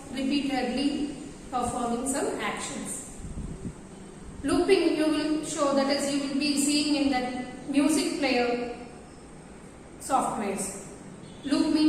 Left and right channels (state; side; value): identical; both; correlation 1.00